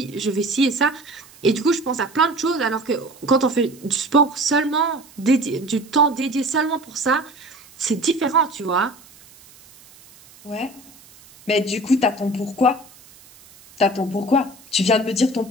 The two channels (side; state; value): right; noise; hiss, 24 dB below the sound